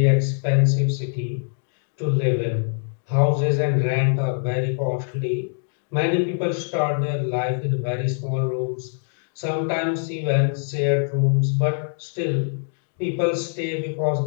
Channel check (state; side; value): silent; right; digital silence